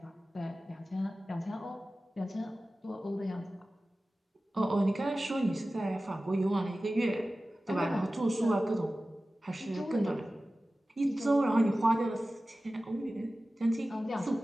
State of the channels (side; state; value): both; normal; correlation 0.96